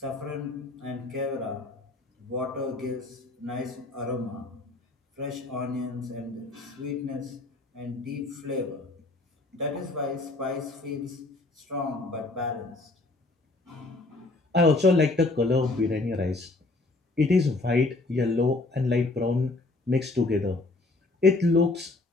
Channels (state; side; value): quieter; right; 3.1 dB